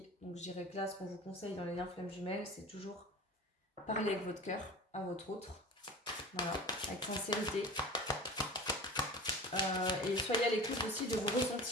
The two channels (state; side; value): normal; both; correlation 0.36